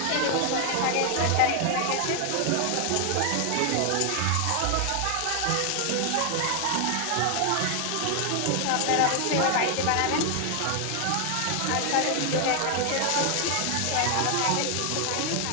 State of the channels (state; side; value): different; both; correlation 0.00